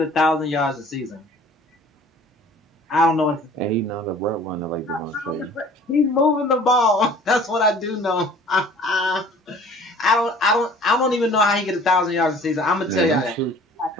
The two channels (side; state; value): both; normal; correlation 0.49